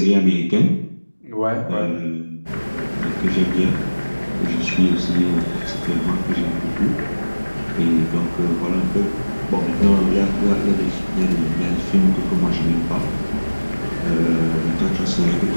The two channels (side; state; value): both; inverted; correlation -1.00